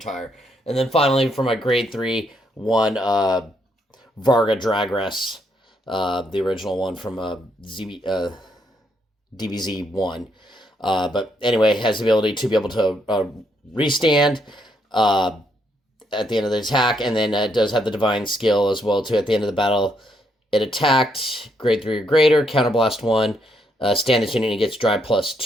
And then finally, for my grade 3, one Varga Dragres, the original one from DBZ 1. But anyway, has the ability to be able to restand at the end of the attack, and then it does have the Divine Skill as well, too. At the end of the battle, it attacked, grade 3 or greater, counterblast 1, stand this unit, and it gets drive plus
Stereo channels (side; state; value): both; normal; correlation 0.75